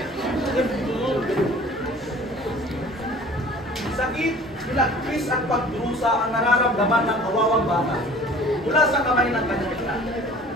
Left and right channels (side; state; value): both; normal; correlation 0.47